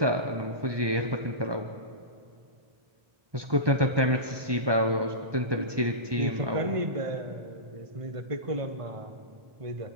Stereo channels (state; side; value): late; left; 1.2 ms